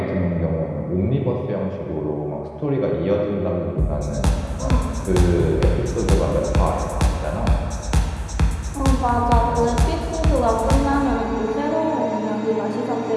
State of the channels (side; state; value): both; identical; correlation 1.00